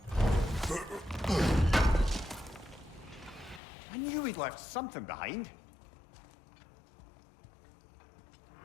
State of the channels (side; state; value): right; drops out; at 3.6 s